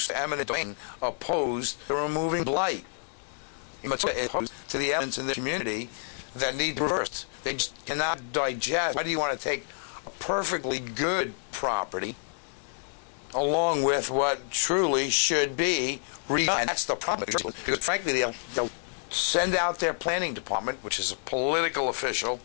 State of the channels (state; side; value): silent; right; digital silence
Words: to eminent domain opposed to removing blight. Opposed to the elements in the community that need to be reversed. They just cannot digest. Why do you want to take a perfectly good property along with what truly should be redone? And that's the problem. Because frankly, they'll send out their planning department, which is a political official,